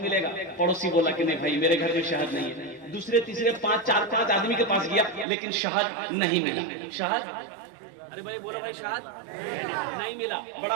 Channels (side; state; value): left; drops out; at 5.2 s